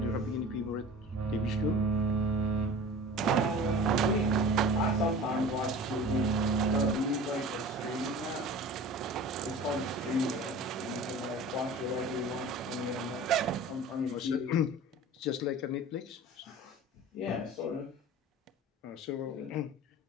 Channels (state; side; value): normal; both; correlation 0.39